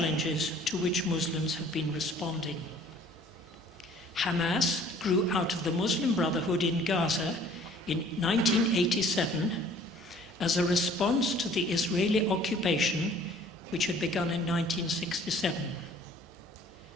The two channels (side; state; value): both; normal; correlation 0.54